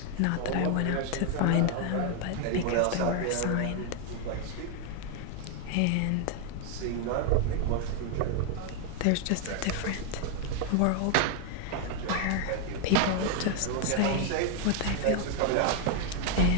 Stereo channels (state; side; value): different; both; correlation 0.01